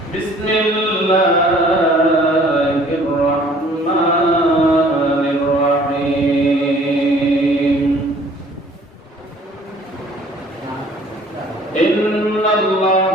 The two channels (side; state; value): both; normal; correlation 0.54